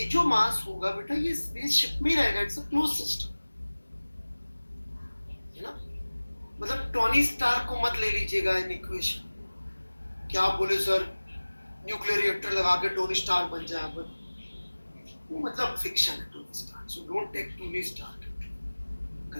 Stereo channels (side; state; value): both; inverted; correlation -1.00